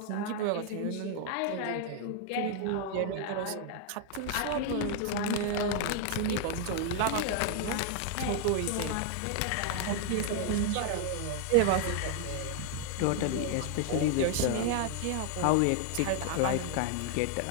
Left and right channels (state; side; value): different; both; correlation 0.00